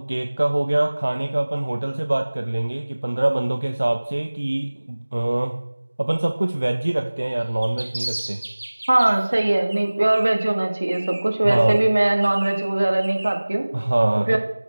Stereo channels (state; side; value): inverted; both; correlation -1.00